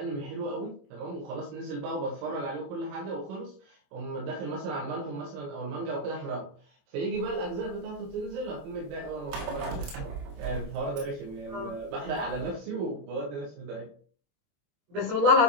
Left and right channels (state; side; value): late; left; 21 ms